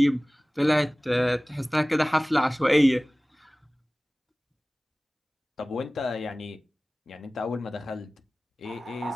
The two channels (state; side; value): normal; both; correlation 0.98